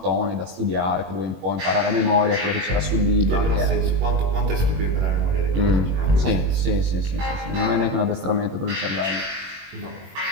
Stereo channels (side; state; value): left; late; 21 ms